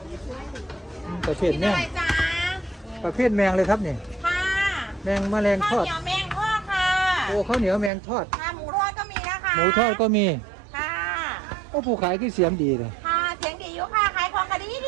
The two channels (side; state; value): left; drops out; at 7.9 s